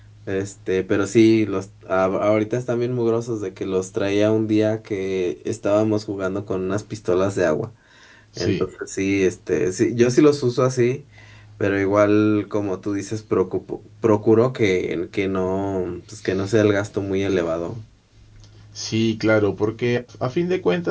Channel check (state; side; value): identical; both; correlation 1.00